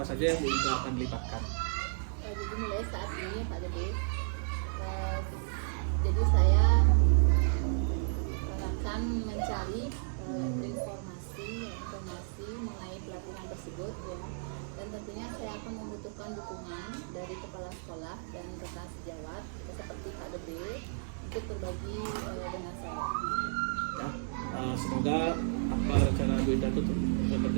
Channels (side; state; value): left; silent; digital silence